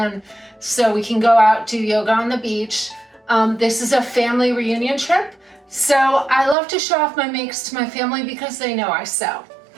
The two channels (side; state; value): left; drops out; at 6.6 s